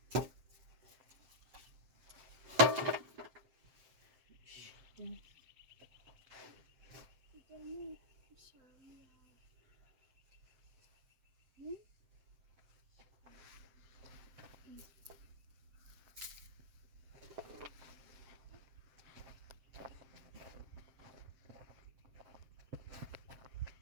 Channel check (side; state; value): left; late; 7.7 ms